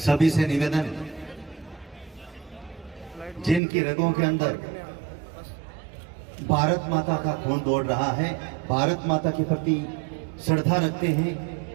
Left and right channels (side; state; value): left; drops out; at 3.6 s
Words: से निवेदन, जिनकी रगों के अंदर भारत माता का खून दौड़ रहा है, भारत माता के प्रति श्रद्धा रखते